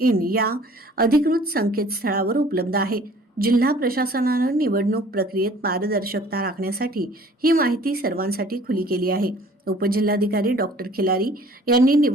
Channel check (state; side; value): normal; both; correlation 0.52